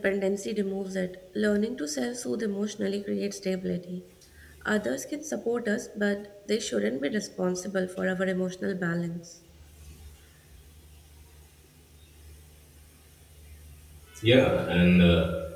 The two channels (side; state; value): both; identical; correlation 1.00